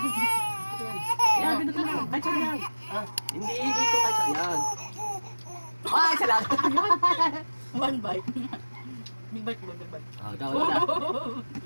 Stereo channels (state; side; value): inverted; both; correlation -1.00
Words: Yan, pindutin mo. Kahit saan yan. Hindi, dito kahit saan yan. Ah, isa lang. One bite. Big bite mo, big bite. Ikaw na.